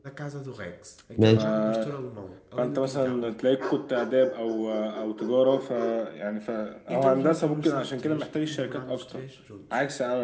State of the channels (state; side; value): identical; both; correlation 1.00